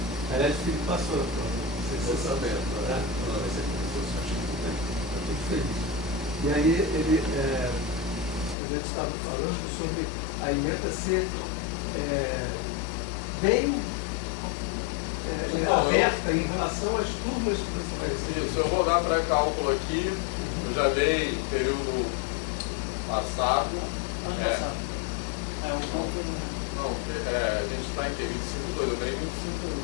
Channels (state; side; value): drops out; right; at 8.6 s